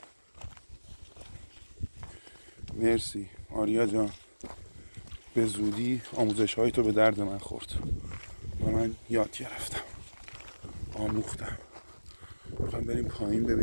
مرسی آریا جان، به زودی آموزش های تو به درد من خورد و من یاد گرفتم، آموختم. میخوایم بریم پایین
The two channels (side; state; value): both; inverted; correlation -1.00